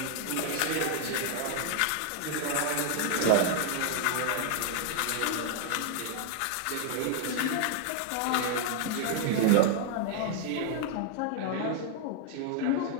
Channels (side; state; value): both; different; correlation 0.00